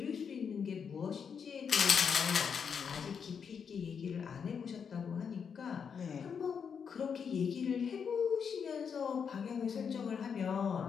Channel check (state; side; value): quieter; right; 6.7 dB